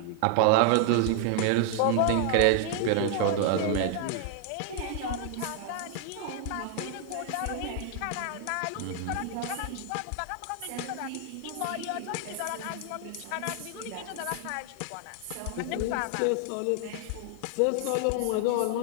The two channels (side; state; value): both; different; correlation 0.00